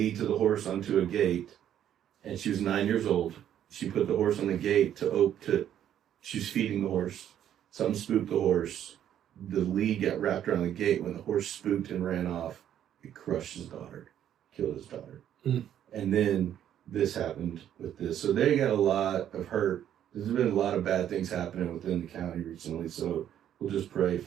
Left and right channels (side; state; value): left; quieter; 10.5 dB